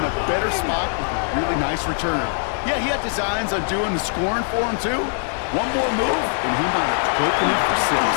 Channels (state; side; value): silent; right; 64 dB below the other